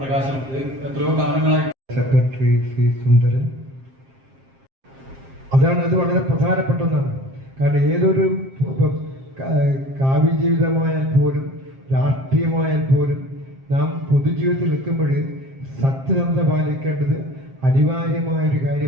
എത്രയോ കാലങ്ങളായി സെക്രട്ടറി സി സുന്ദരൻ. അത് വളരെ പ്രധാനപ്പെട്ട ഒന്നാണ്. കാരണം ഏതൊരു കാവ്യജീവിതമായാൽ പോലും രാഷ്ട്രീയമായാൽ പോലും നാം പൊതുജീവിതത്തിൽ നിൽക്കുമ്പോൾ സത്യസന്ധത പാലിക്കേണ്ടത് അനിവാര്യമായൊരു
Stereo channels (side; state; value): left; late; 7.5 ms